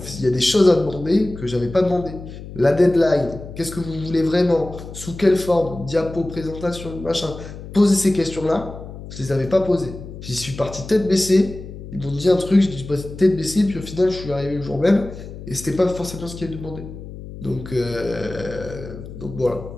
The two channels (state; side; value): noise; left; hum, 12 dB below the sound